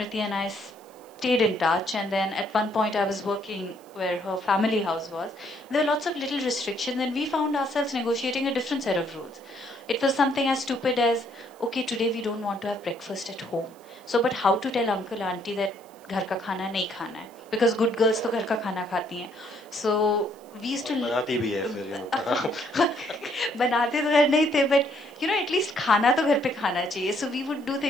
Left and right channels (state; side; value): noise; right; hiss, 28 dB below the sound